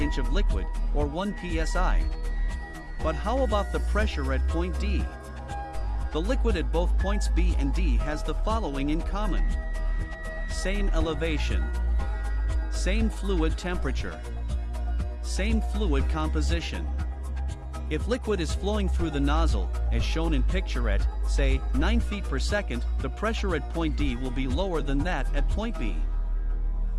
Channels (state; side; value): identical; both; correlation 1.00